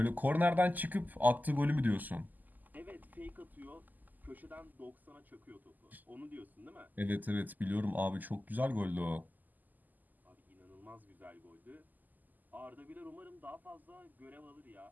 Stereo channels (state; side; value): late; left; 0.084 ms